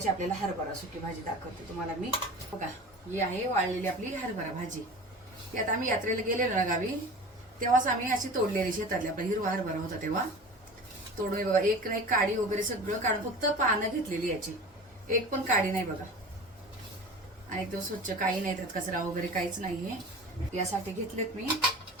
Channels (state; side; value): normal; both; correlation 0.36